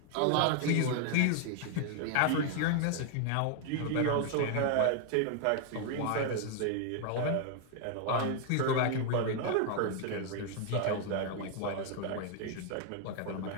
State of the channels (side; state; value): both; different; correlation 0.00